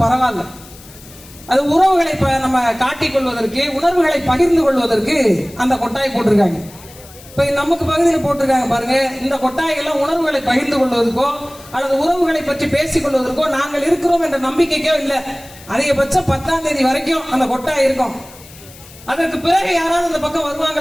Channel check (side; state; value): left; noise; hiss, 21 dB below the sound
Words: பரவாயில்ல, அது உறவுகளை நம்ம காட்டிக் கொள்வதற்கு, உணர்வுகளை பகிர்ந்து கொள்வதற்கு அந்த கொட்டாய் போட்டிருக்காங்க. இப்ப நமக்கு பகுதியில் போட்டிருக்காங்க பாருங்க. இந்த கொட்டாய்கள்லாம் உணர்வுகளை பகிர்ந்து கொள்வதற்கோ அல்லது உறவுகளை பற்றி பேசிக் கொள்வதற்கோ நாங்கள் இருக்கிறோம் என்ற நம்பிக்கைக்கோ இல்லை. அதிகபட்சம் 10ஆம் தேதி வரைக்கும் அந்த கொட்டாய் இருக்கும். அதற்கு பிறகு யாராவது அந்த பக்கம்